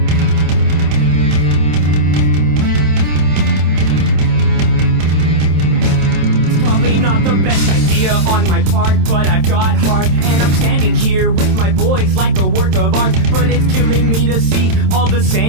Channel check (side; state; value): left; late; 27 ms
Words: Probably not the best idea on my part, but I've got heart, and I'm standing here with my boys like a work of art. But it's killing me to see all the